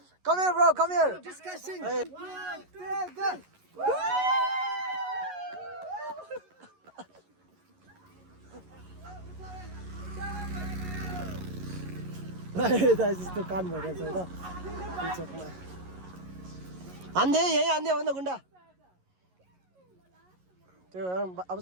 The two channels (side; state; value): left; late; 11 ms